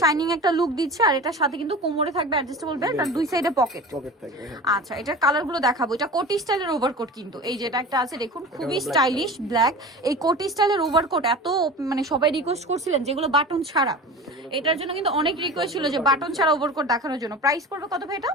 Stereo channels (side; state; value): both; normal; correlation 0.35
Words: একটা লুক দিচ্ছে। আর এটার সাথে কিন্তু কোমরে থাকবে অ্যাডজাস্টেবল বেল্ট, আর দুই সাইডে পকেট থাকবে। আচ্ছা, এটার কালার গুলো দেখাবো। এটা কোটি স্টাইলের ওভারকোট, কিন্তু এই যেটা একটা আছে দেখুন, খুবই স্টাইলিশ ব্ল্যাক। এই কোটি স্টাইলের ওভারকোট এত মানে সবাই রিকোয়েস্ট করছিলেন যেগুলো বাটন ছাড়া, এটার জন্য কিন্তু অনেক রিকোয়েস্ট ছিল যে বাটন ছাড়া ওভারকোট দেখানোর জন্য। প্রাইস পড়বে কত ভাই এটা?